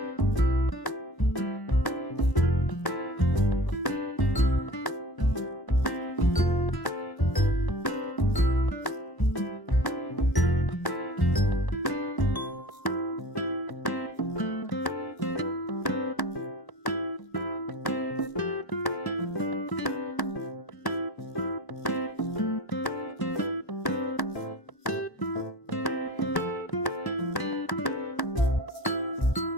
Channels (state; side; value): late; right; 1.0 ms